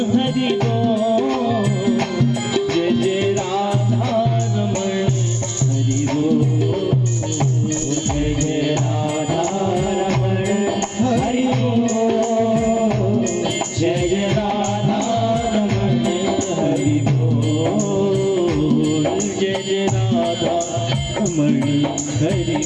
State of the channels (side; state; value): both; identical; correlation 1.00